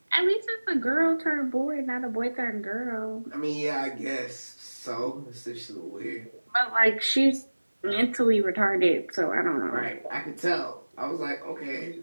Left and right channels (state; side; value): inverted; both; correlation -1.00